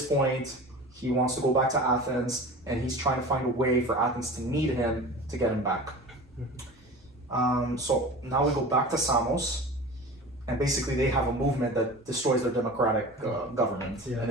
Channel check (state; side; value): normal; both; correlation 0.35